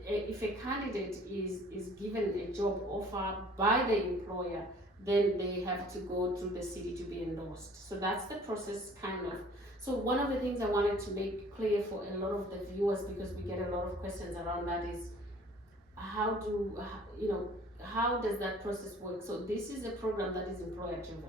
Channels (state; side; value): normal; both; correlation 0.52